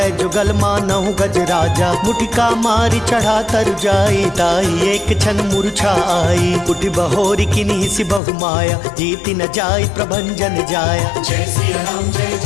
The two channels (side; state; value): right; drops out; at 8.2 s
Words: जुगल मानहु गज राजा। मुटिका मारी चढ़ा तरु जाई, ताहि एक क्षण मूर्छा आई। उठि बहोरी किन्हि सि बहु माया, जीति न जाई प्रभंजन जाया। जय सिया राम जय